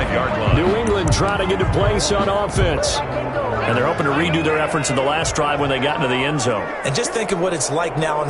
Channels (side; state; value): both; identical; correlation 1.00